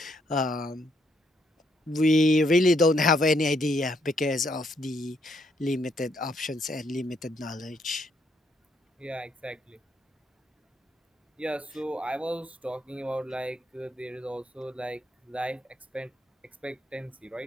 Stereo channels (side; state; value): both; normal; correlation 0.73